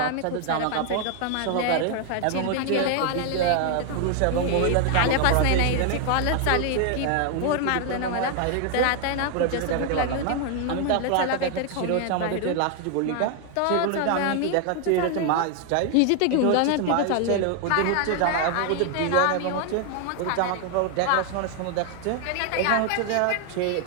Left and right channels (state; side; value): different; both; correlation 0.00